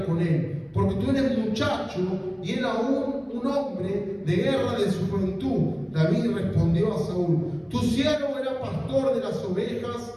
con él, porque tú eres muchacho y él aún un hombre de guerra de su juventud. David respondió a Saúl: Tu siervo era pastor de las ovejas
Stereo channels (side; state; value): both; identical; correlation 1.00